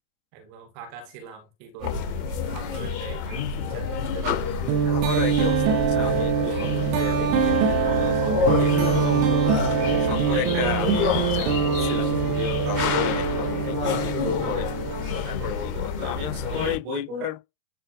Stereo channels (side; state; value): left; late; 33 ms